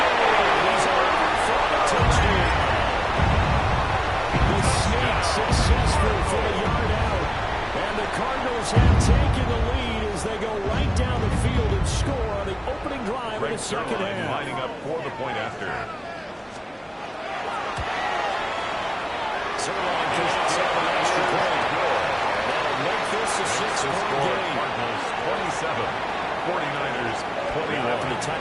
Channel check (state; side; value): identical; both; correlation 1.00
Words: He's over for a touchdown. The sneak successful for the yard out. And the Cardinals have taken the lead as they go right down the field and score on the opening drive of the second half. Lining up for the point after. Zerline pushes up an extra point. That'll make this a six-point game. Cardinals 27, 49ers 21. After the